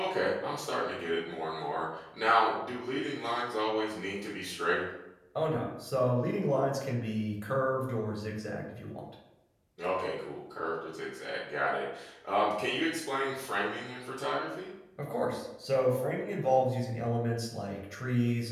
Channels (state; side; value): identical; both; correlation 1.00